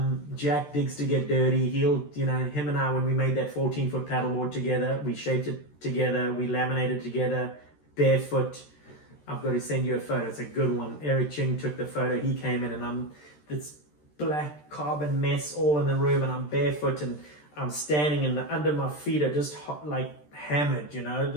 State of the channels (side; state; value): right; late; 13 ms